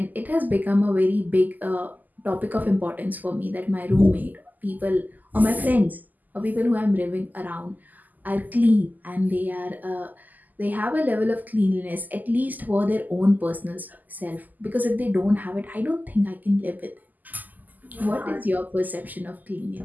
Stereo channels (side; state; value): left; late; 0.083 ms